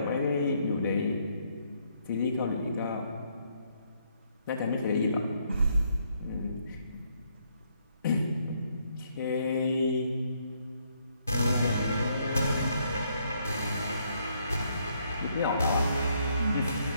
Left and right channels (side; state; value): both; inverted; correlation -0.72